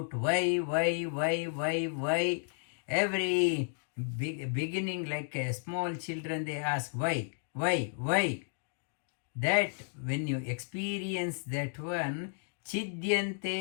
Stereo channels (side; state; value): right; silent; digital silence